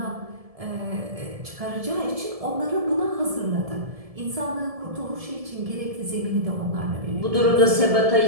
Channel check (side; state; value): left; late; 1.7 ms